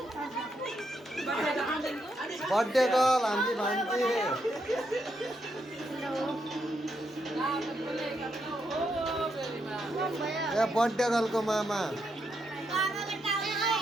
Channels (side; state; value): both; normal; correlation 0.80